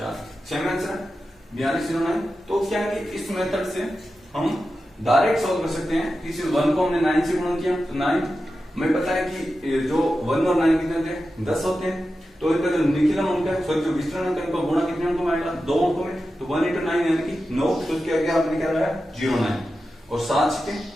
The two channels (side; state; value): both; normal; correlation 0.92